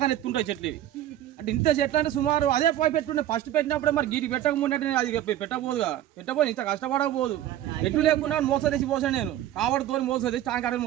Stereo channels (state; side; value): quieter; left; 12.5 dB